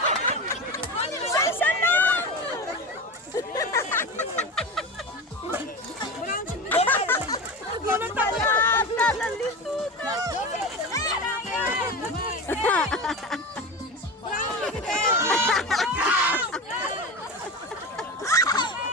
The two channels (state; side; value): normal; both; correlation 0.26